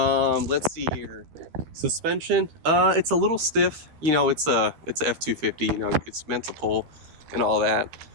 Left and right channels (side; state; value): left; late; 13 ms